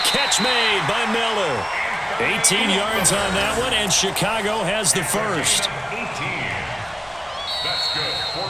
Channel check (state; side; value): identical; both; correlation 1.00